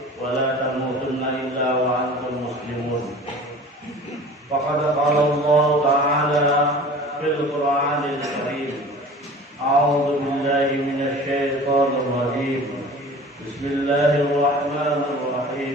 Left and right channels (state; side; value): normal; both; correlation 0.42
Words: ولا تموتن إلا وأنتم مسلمون. فقد قال الله تعالى في القرآن الكريم: أعوذ بالله من الشيطان الرجيم، بسم الله الرحمن